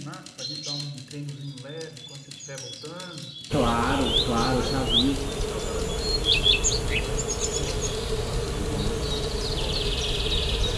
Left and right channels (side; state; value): both; identical; correlation 1.00